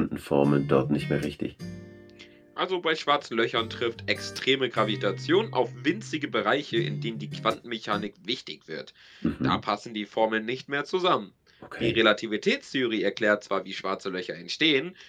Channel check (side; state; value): both; identical; correlation 1.00